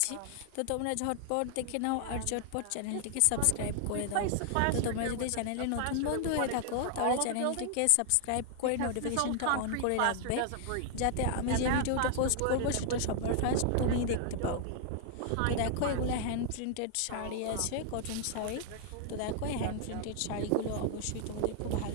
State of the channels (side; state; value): both; different; correlation 0.00